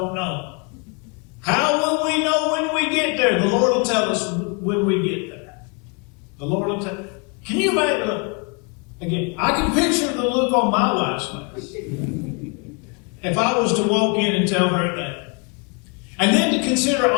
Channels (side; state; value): right; quieter; 33.2 dB